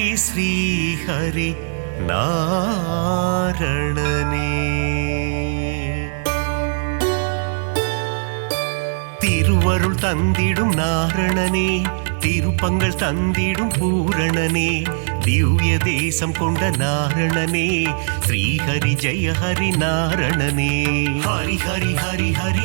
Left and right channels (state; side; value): silent; left; digital silence